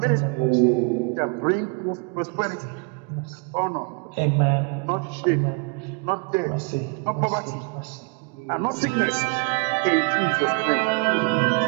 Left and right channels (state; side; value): quieter; left; 32.9 dB